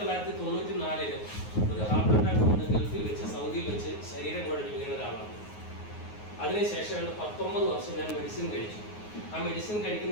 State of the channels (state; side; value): late; right; 9.5 ms